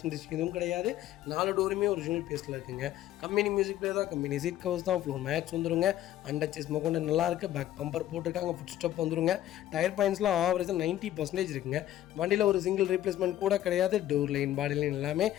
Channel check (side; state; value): right; quieter; 13.0 dB